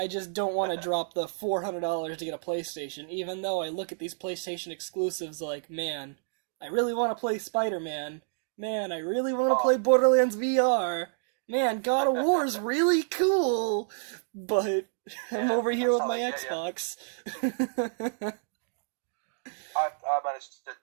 just don't want to drop the $400 to get a PlayStation, even though I look at these PlayStation exclusives like, man, I really want to play Spider-Man. Man, I really want to play Borderlands VR. Man, God of War's really cool. But I'm over here with my Xbox. I managed to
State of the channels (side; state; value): left; silent; digital silence